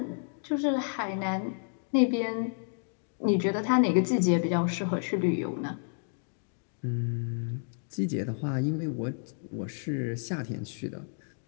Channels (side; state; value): right; silent; 57 dB below the other